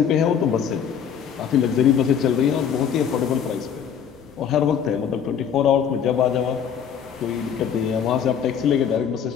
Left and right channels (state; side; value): quieter; right; 8.0 dB